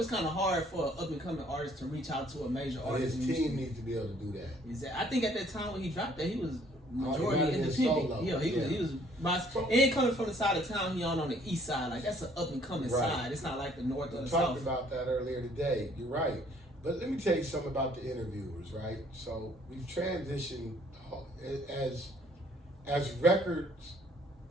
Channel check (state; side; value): normal; both; correlation 0.61